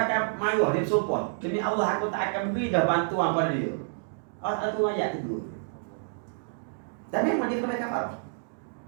marah, dia bersumpah, demi Allah aku tak akan beri dah bantuan pada dia. Allah tu ayat tu. Dan memang dia kena kafarah.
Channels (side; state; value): left; silent; digital silence